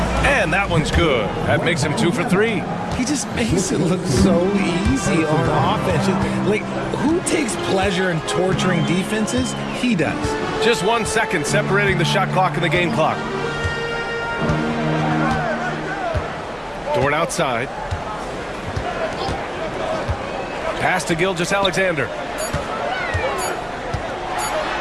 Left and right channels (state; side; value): identical; both; correlation 1.00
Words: And that one's good. That makes him 2 for 3. He just makes it look so easy on offense. Like, who takes pleasure in torturing defenses? He does. Just 1 second separating the shot clock and the game clock. Dort outside. Pass to Gilgeous-Alexander.